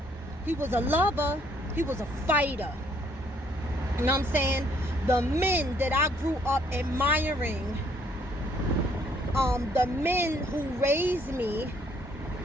He was a lover. He was a fighter. You know what I'm saying? The men that I grew up admiring, the men who raised me,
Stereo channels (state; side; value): normal; both; correlation 0.66